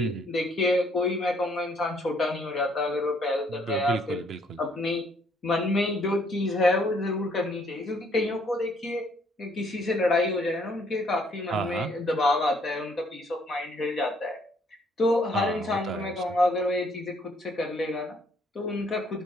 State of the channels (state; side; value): normal; both; correlation 0.66